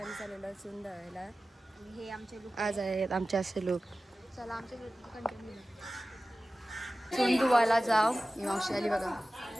चाललेलो चून दळायला. हे आमचे लोक आज आहेत आमचे असे लोक. चला आमचे कंटिन्यू चून धुवायला जाव. ही मावशी आली बघा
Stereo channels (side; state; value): both; normal; correlation 0.96